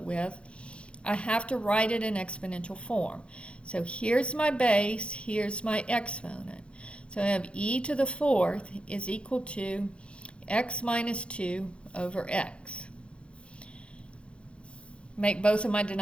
I have to write it in exponential form. So here's my base, here's my exponent. So I have e to the 4th is equal to x minus 2 over x. Make both of my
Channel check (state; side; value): late; right; 0.058 ms